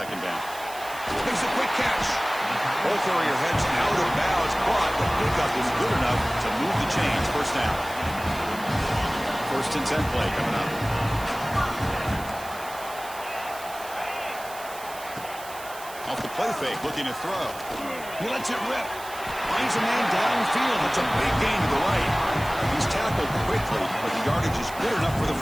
down. Makes a quick catch. Both area heads out of bounds, but the pickup is good enough to move the chains. First down. First and 10 play coming up. Off the play fake, looking to throw. He lets it rip. Finds a man downfield. It's a big gain to the right. He's tackled quickly, but the yardage is good enough for the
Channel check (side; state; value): right; noise; hiss, 15 dB below the sound